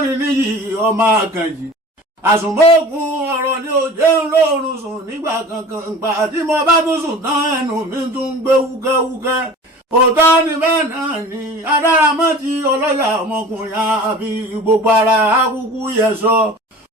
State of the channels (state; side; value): normal; both; correlation 0.40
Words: níyì ọmọ àkànjì àsùnmọ́gun ọ̀rọ̀ ni ò jẹ́ ń lóorun sùn nígbà kankan gbà tí mo bá tún sùn tán ẹnu mi tún ń gbé wúkẹ́wúkẹ́ òótọ́ ni bẹ́ẹ̀ náà ni adáramọ́ ti ọlọ́yà ọmọkùnrin àbí gbogbo ara akúkú yẹ sọ